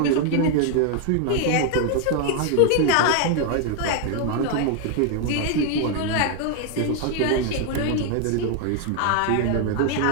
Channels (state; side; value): different; both; correlation 0.00